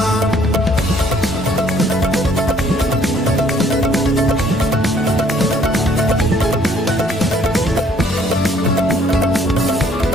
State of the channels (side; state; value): both; normal; correlation 0.62